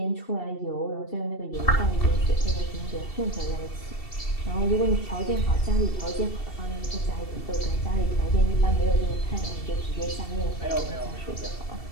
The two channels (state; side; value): late; right; 2.7 ms